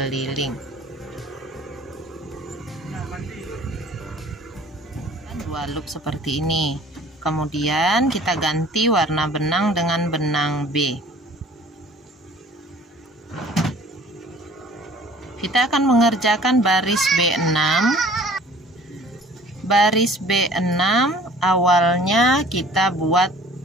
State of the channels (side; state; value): both; normal; correlation 0.50